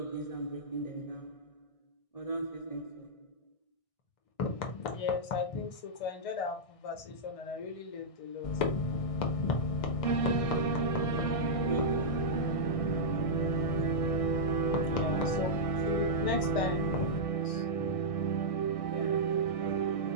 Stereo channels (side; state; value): right; late; 1.6 ms